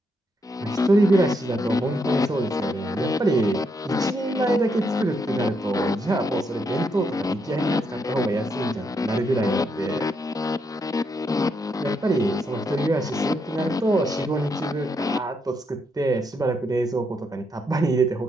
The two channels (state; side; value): normal; both; correlation 0.78